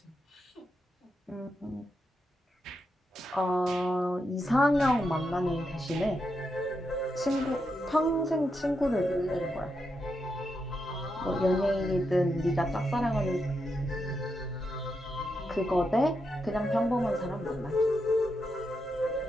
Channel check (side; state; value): both; normal; correlation 0.84